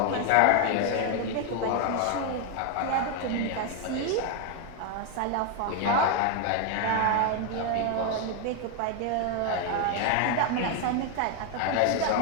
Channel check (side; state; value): both; different; correlation 0.01